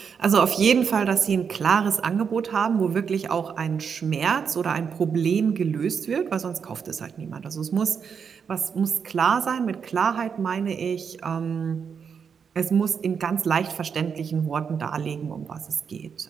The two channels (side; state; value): left; quieter; 6.6 dB